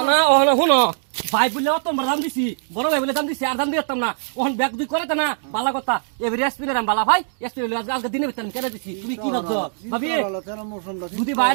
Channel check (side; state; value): left; silent; digital silence